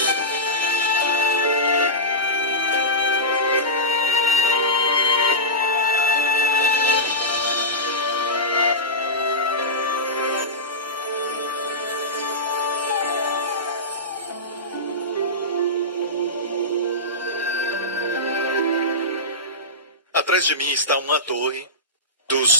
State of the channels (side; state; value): both; normal; correlation -0.16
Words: Atrás de mim está uma torre